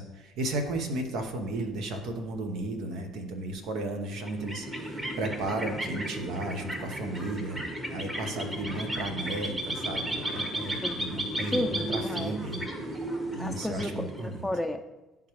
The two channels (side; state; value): both; normal; correlation 0.59